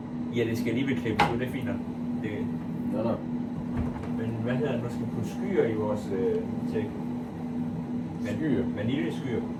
Ja, det skal alligevel klippes ud, det er fint. Det... Nå. Men hvad hedder det, nu skal vi putte skyer i vores milkshake. Skyer? Vaniljeskyer.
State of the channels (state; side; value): identical; both; correlation 1.00